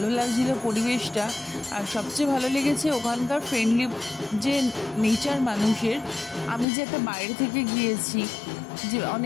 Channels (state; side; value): drops out; right; at 6.7 s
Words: লাগছিল পরিবেশটা। আর সবচেয়ে ভালো লেগেছে ওখানকার ফ্রেন্ডলি যে নেচার মানুষের। আমি যে একটা বাইরে থেকে গিয়েছি, যে